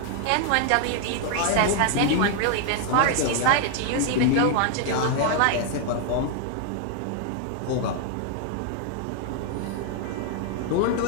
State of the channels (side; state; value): both; different; correlation 0.00